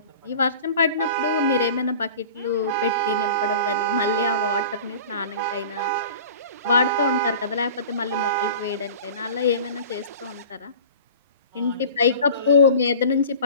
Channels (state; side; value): inverted; both; correlation -0.41